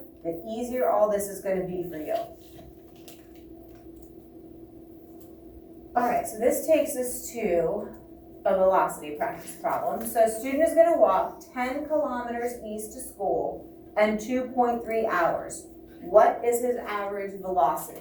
the easier all this is going to be for you. All right, so this takes us to a velocity practice problem. So a student is going to walk 10 kilometers east to school in 2.3 hours. What is his average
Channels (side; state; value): both; identical; correlation 1.00